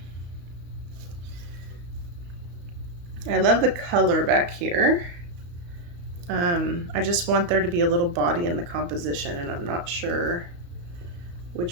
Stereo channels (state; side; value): late; left; 34 ms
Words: I love the color back here. I just want there to be a little body in the composition, and I'm not sure